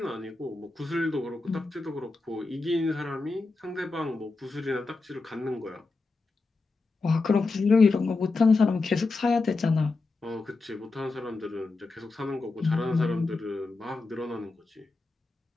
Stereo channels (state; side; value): quieter; right; 3.7 dB